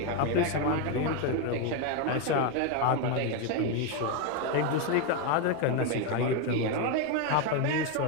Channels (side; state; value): both; different; correlation 0.02